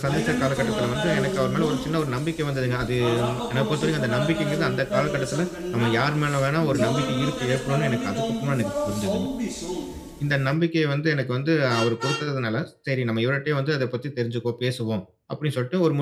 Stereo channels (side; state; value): both; identical; correlation 1.00